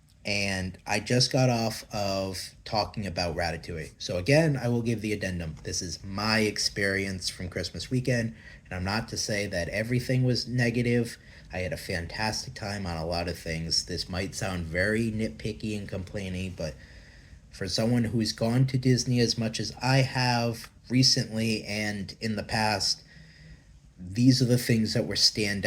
and I just got off of talking about Ratatouille. So, again, I will give the addendum. This is my experience from Christmas weekend, and I'm not to say that everything was negative. I had a fantastic time on a lot of things. This might sound very nitpicky and complaining, but for someone who's gone to Disney as much as I have recently and in the past, these are the things that were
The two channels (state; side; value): identical; both; correlation 1.00